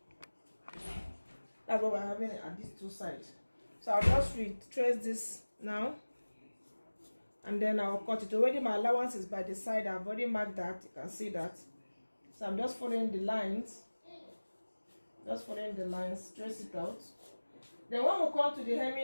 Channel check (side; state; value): both; inverted; correlation -1.00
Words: that's what we're having at these two sides. So I'll just retrace this now, and then I'll cut it. Already my allowance is by the side. I've already marked that. You can see that. So I'm just following the lines. Just following the lines, trace it out. Then when we come to the